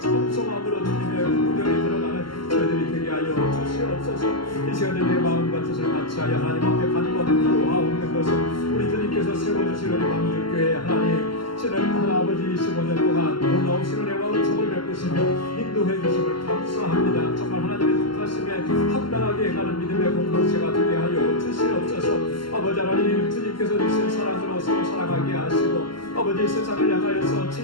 주님의 구경에 들어가는 저희들이 되게 하여 주시옵소서. 이 시간에 내 마음과 뜻을 같이하여 하나님 앞에 간구하고 하옵는 것은 우리 주님께서 세워주신 우리 방주교회 하나님 지난 아버지 25년 동안 놀라우신 은혜와 은총을 베푸시며 인도해 주심을 감사합니다. 정말 하나님의 뜻하심에 합당하게 가는 믿음의 공동체가 되게 하여 주시옵소서. 아버지 하나님 주님께서 주신 사랑으로 서로 사랑하게 하시고 아버지 세상을 향하여서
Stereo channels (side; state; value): right; late; 0.72 ms